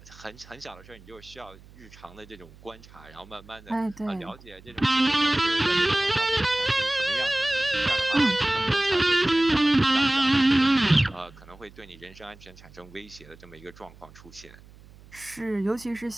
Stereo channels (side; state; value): right; noise; hum, 23 dB below the sound